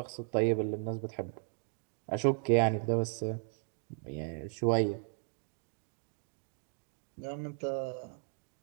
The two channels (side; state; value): left; silent; 54 dB below the other